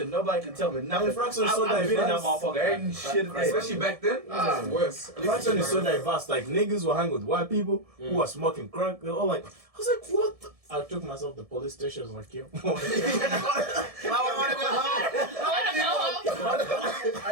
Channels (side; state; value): left; late; 1.7 ms